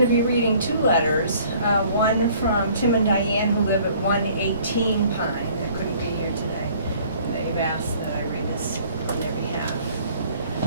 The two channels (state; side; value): inverted; both; correlation -0.55